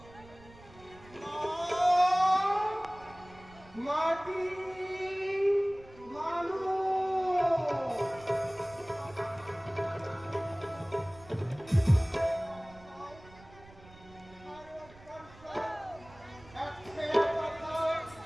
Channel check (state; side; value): noise; right; rumble, 22 dB below the sound